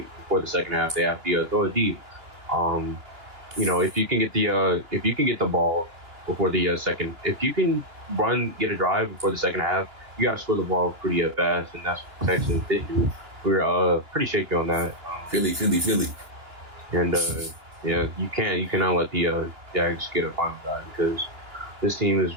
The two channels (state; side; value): late; left; 2.9 ms